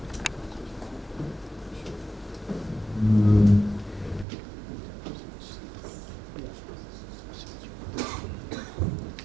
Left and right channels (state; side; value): drops out; left; at 4.2 s